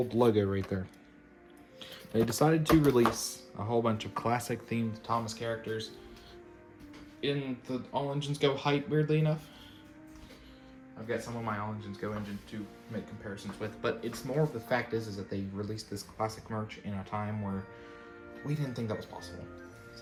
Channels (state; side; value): identical; both; correlation 1.00